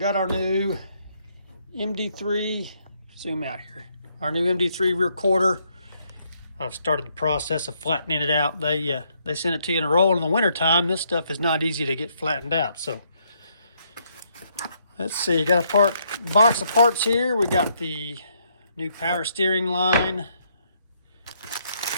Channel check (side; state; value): both; inverted; correlation -0.73